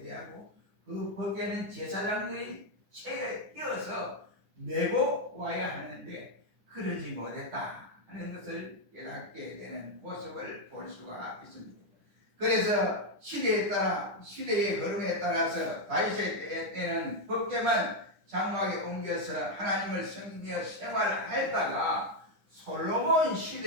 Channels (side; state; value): left; late; 10 ms